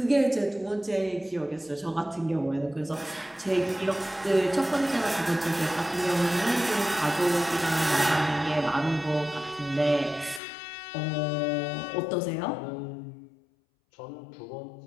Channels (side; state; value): right; drops out; at 10.4 s